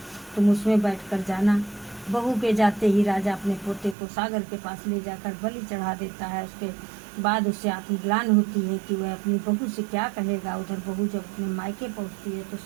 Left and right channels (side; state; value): left; drops out; at 4.0 s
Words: तुम उसमें बैठकर जाना। बहू के जाते ही राजा अपने पोते को सागर के पास ले जाकर बलि चढ़ा देता है। उसके बाद उसे आत्मग्लान होती है कि वह अपनी बहू से क्या कहेगा। उधर बहू जब अपने मायके पहुंचती है तो